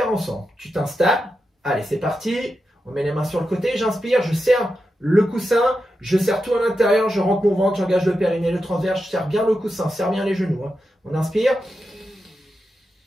ensemble. Tu t'installes. Allez, c'est parti. On met les mains sur le côté. J'inspire, je serre le coussin, je serre tout à l'intérieur, je rentre mon ventre, j'engage le périnée, le transverse, je serre bien le coussin, serre bien les genoux, hein. On inspire.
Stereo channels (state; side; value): normal; both; correlation 0.89